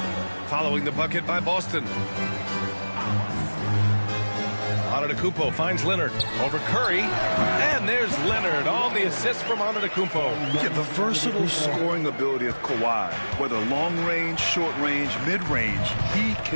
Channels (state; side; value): inverted; both; correlation -1.00